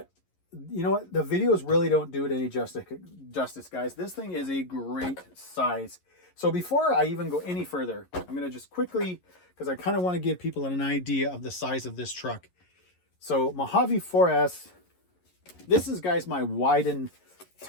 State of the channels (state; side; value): late; right; 11 ms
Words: you know what? The videos really don't do it any justice, guys. This thing is a great size. So before I even go any further, I'm going to just quickly, because I kind of want to give people an idea of the size of this truck. So Mojave 4S, this is, guys, my Wyden